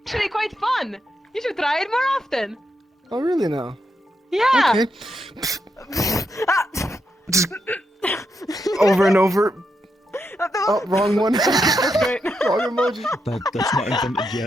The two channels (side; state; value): both; normal; correlation 0.83